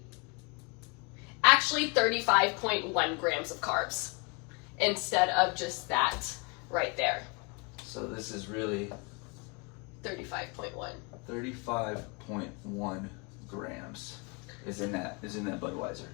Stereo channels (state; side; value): quieter; right; 30.9 dB